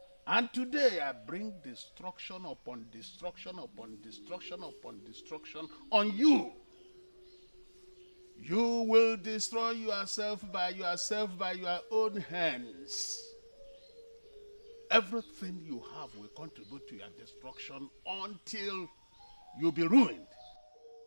And today I bring destruction upon destruction upon destruction upon destruction on you. You will destroy yourself by your own hands. Everything you have will contribute to your destruction until you be ruined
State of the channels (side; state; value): both; inverted; correlation -1.00